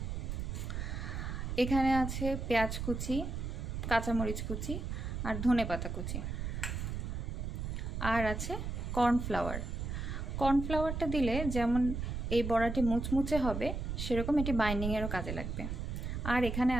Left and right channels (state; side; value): noise; right; rumble, 3 dB below the sound